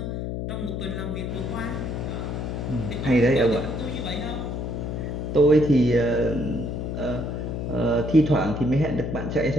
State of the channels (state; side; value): noise; left; hum, 4 dB below the sound